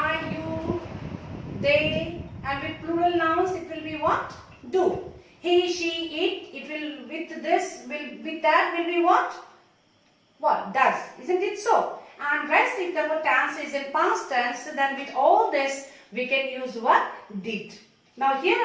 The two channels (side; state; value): both; identical; correlation 1.00